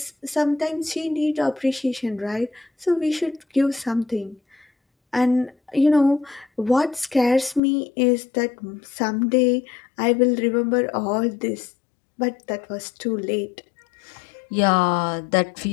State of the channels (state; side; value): drops out; right; at 7.6 s